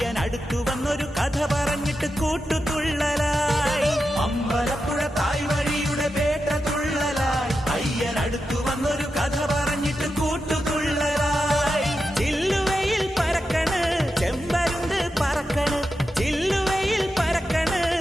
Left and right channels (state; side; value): normal; both; correlation 0.89